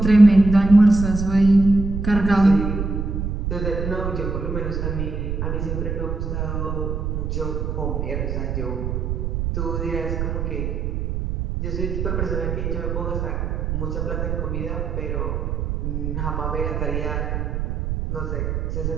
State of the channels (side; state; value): right; noise; rumble, 2 dB below the sound